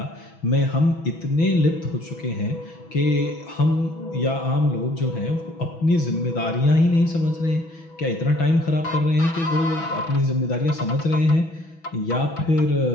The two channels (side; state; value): right; late; 6.1 ms